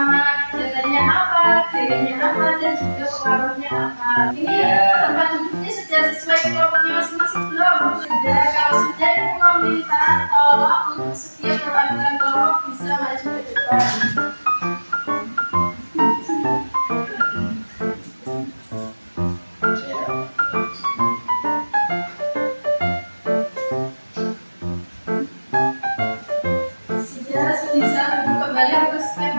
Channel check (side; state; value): both; inverted; correlation -1.00